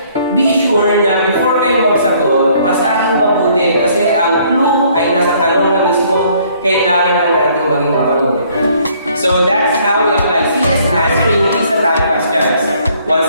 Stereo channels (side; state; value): both; inverted; correlation -0.62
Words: be sure na before kayo magsagot, basahin mabuti kasi ang clue ay nasa tanong na mismo, kailangan lang natin maging mapanuri. So, that's how we apply CS answering PISA type questions. Once